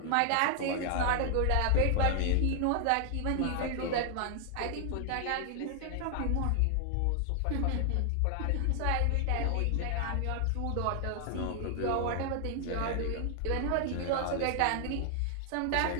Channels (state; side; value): different; both; correlation 0.00